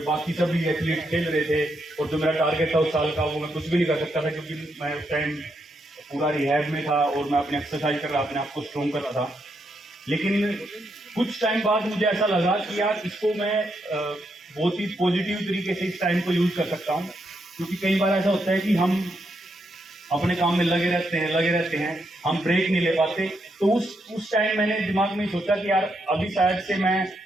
बाकी सभी एथलीट खेल रहे थे, और जो मेरा टारगेट था उस साल का वो मैं कुछ भी नहीं कर सकता था, क्योंकि मैं उस टाइम पूरा रिहैब में था और मैं अपनी एक्सरसाइज कर रहा, अपने आप को स्ट्रॉन्ग कर रहा था। लेकिन कुछ टाइम बाद मुझे ऐसा लगा कि यार इसको मैं बहुत ही पॉजिटिव तरीके से इस टाइम को यूज कर सकता हूँ, क्योंकि कई बार ऐसा होता है कि हम अपने काम में लगे रहते हैं, हम ब्रेक नहीं ले पाते। तो उस टाइम मैंने दिमाग में सोचा कि यार अभी शायद से मैं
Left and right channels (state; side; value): normal; both; correlation 0.80